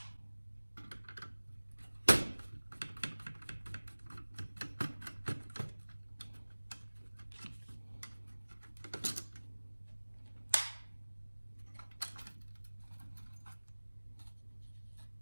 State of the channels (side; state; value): both; inverted; correlation -1.00